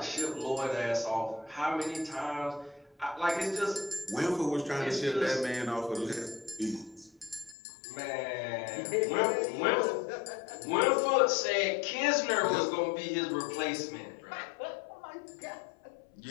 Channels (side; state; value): right; drops out; at 7.6 s